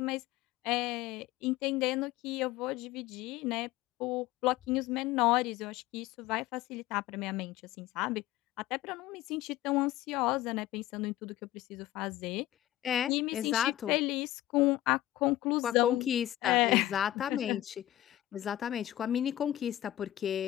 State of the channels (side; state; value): right; quieter; 14.5 dB